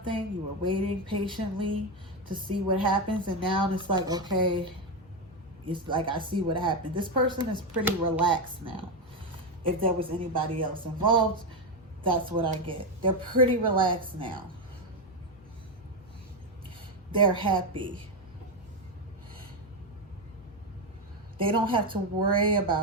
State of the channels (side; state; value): both; normal; correlation 0.09